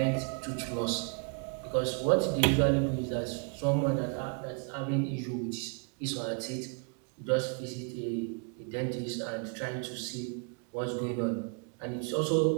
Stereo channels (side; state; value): left; quieter; 38.4 dB